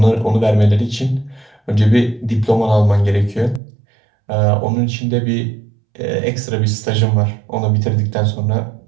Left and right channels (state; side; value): drops out; left; at 3.6 s